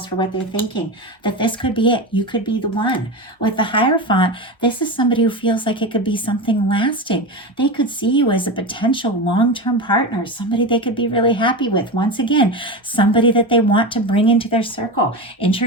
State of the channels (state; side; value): normal; both; correlation 0.21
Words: for what they're thinking, that this could be it. You could be the one. With the Hierophant, this is somebody who feels like it could be something lasting. They could see you as a potential long-term partner, somebody they could be really happy with. Once again, somebody that they want to bring into their circle,